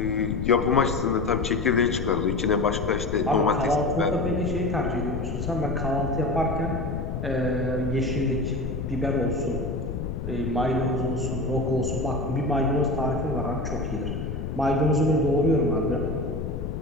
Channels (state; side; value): noise; left; rumble, 5 dB below the sound